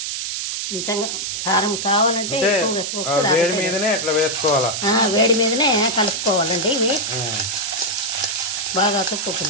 కొంచెం కారం కావాలంటే వేడి మీదనే అట్లా వేసుకోవాలా, వేడి మీదనే కలుపుకోవాలండి. ఇవి బాగా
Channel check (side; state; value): right; noise; hiss, 3 dB below the sound